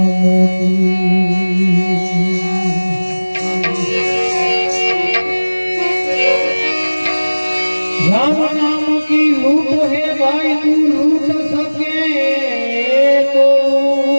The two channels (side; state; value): both; inverted; correlation -1.00